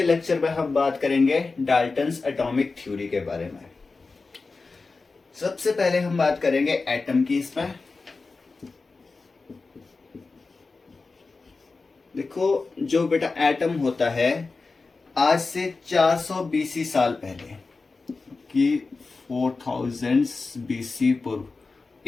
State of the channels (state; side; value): quieter; right; 4.0 dB